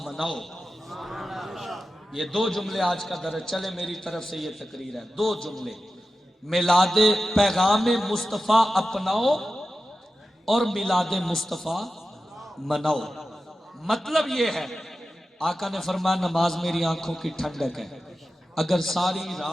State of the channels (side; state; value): both; normal; correlation 0.93